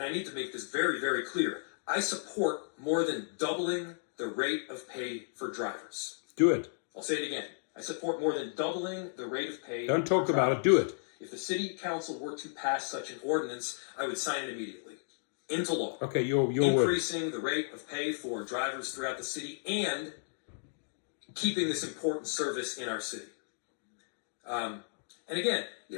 I need to make this very, very clear, I support more than doubling the rate of pay for drivers. Do it. I'll say it again. I support more than doubling the rate of pay. Don't talk about it, do it. If the city council were to pass such an ordinance, I would sign it immediately into law. Okay, your word. Increasing the rate of pay for drivers throughout the city and keeping this important service in our city. And again,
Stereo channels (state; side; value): silent; right; digital silence